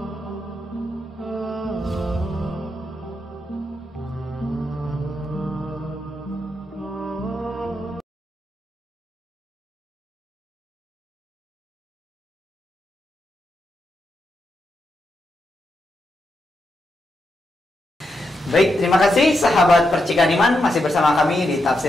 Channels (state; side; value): normal; both; correlation 0.84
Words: Baik, terima kasih sahabat Percikan Iman, masih bersama kami di